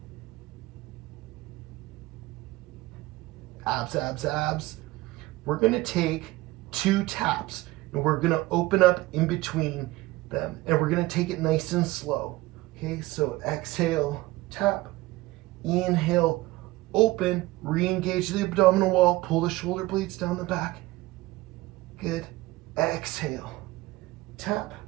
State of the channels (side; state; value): left; quieter; 19.1 dB